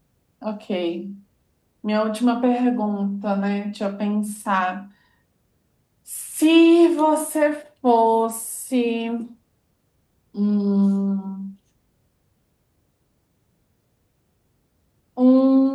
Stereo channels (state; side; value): identical; both; correlation 1.00